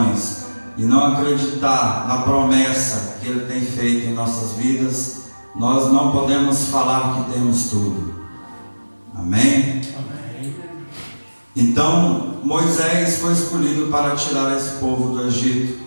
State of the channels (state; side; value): inverted; both; correlation -1.00